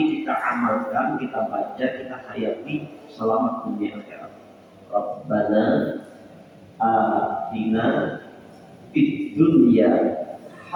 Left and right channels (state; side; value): identical; both; correlation 1.00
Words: kita amalkan, kita baca, kita hayati, selamat dunia akhirat. Rabbana atina fid dunya